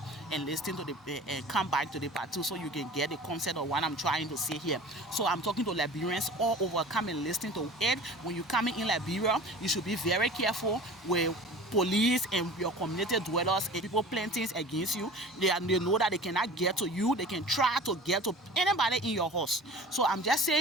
and listen to the and come back to the part 2 so you can get the concept of what I'm trying to say here. So I'm talking to Liberians all over. Come and listen to it. When you come in Liberia, you should be very careful with police and your community dwellers and people planting things against you. They know that they cannot get to you. They can try to get to anybody in your house. So I'm just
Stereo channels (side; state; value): both; normal; correlation 0.41